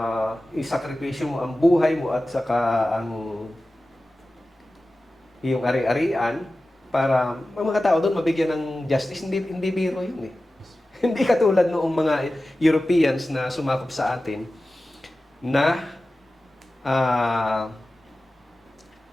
isakripisyo mo ang buhay mo at saka ang iyong ari-arian para ang mga tao doon mabigyan ng justice. Hindi biro yun Hindi katulad noong mga Europeans na sumakop sa atin na ah,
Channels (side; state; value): both; normal; correlation 0.95